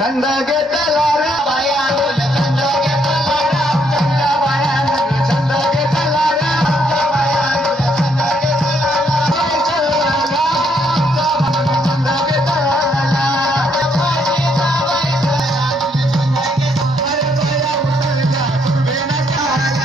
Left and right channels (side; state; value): both; normal; correlation 0.72